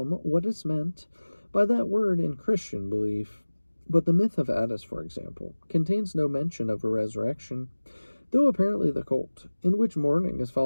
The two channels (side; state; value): both; inverted; correlation -1.00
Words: what is meant by that word in Christian belief. But the myth of Attis, for example, contains no mention of a resurrection, though apparently the cult, in which mourning is